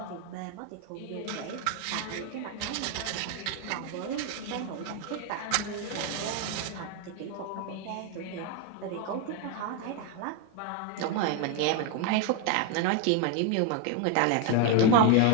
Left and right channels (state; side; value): different; both; correlation 0.01